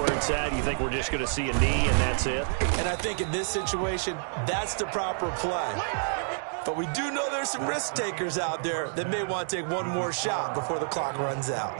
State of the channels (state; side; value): silent; left; digital silence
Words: it's at, you think we're just going to see a knee and that's it? And I think in this situation, that's the proper play. But we do know there's some risk takers out there that may want to take one more shot before the clock runs